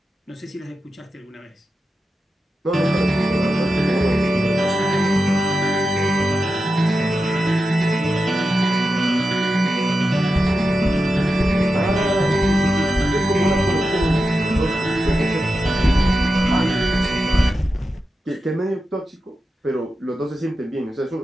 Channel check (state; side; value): normal; both; correlation 0.90